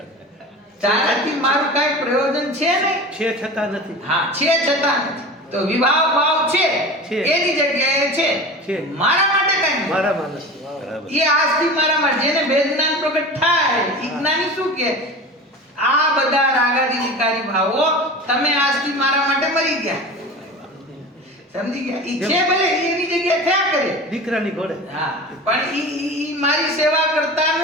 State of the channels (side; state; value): both; normal; correlation 0.33